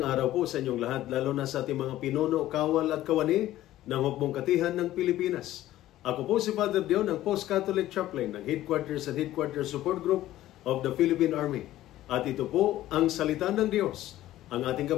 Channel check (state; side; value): quieter; right; 14.4 dB